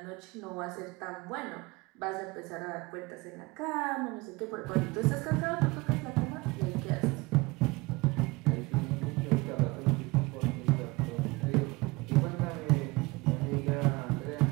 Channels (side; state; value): left; quieter; 23.6 dB